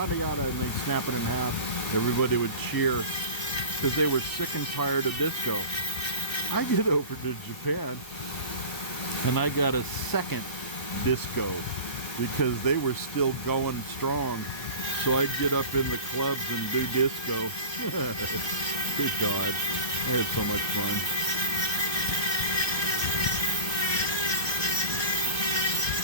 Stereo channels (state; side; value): late; right; 1.5 ms